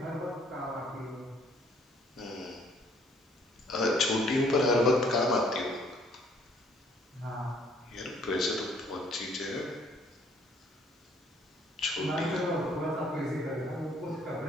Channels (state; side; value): normal; both; correlation 0.62